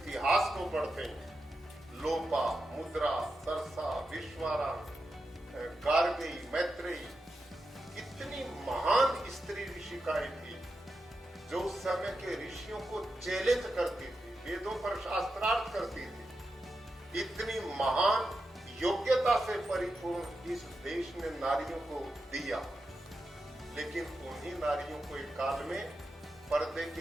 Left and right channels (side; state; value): both; normal; correlation 0.89